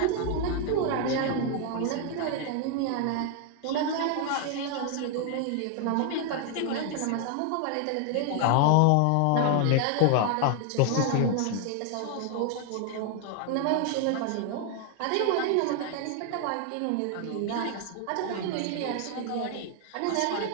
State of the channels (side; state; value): both; different; correlation 0.00